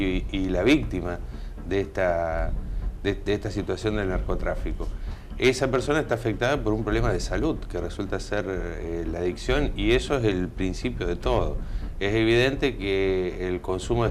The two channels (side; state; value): both; identical; correlation 1.00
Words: la víctima de esta situación del narcotráfico. Esa persona está afectada por un problema de salud que resulta ser la adicción, y eso es el principio de todo. Es evidente que el consumo de